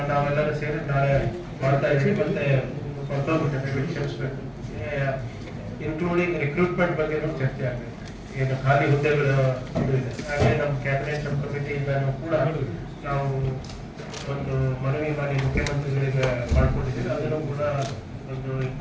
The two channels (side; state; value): both; identical; correlation 1.00